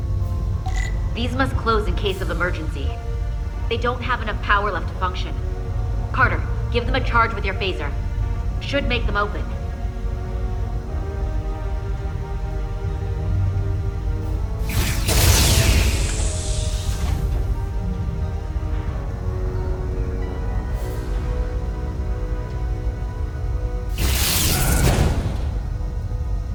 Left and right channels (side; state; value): both; identical; correlation 1.00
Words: These must close in case of emergency. They don't have enough power left to function. Carter, give them a charge with your phaser. Should make them open.